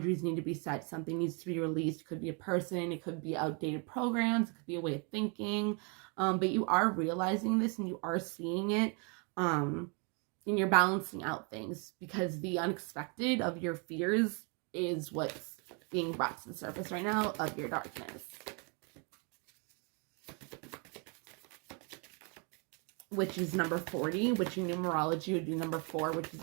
need to be set. Something needs to be released. It could be a person, it could be outdated programs, it could be a way of thinking, but you are realizing this and you are seeing it, and you're balancing out things, because the unexpected of your fears is what's being brought to the surface right now of your darkness. which is number 40, which in numerology would be number 4, which is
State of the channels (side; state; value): left; quieter; 35.1 dB